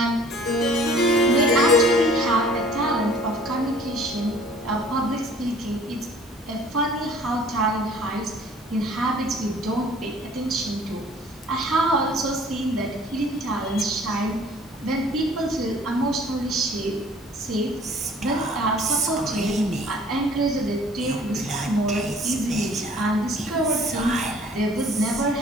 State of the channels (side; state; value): both; normal; correlation 0.52